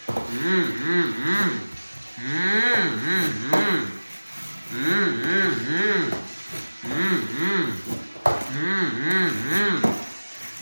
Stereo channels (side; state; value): both; inverted; correlation -1.00